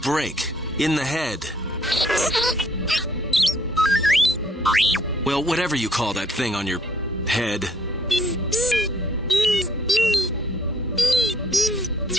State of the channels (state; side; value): normal; both; correlation 0.63